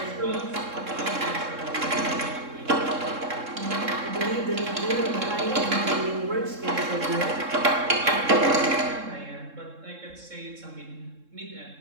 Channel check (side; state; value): left; late; 3.7 ms